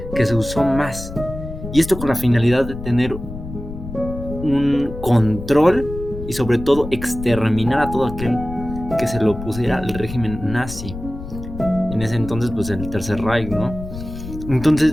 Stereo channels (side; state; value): left; noise; rumble, 10 dB below the sound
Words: que se usó más. Y esto con la finalidad de tener un control y sobre todo exterminar a todo aquel que se le opusiera al régimen nazi. En ese entonces, pues el Tercer Reich, ¿no?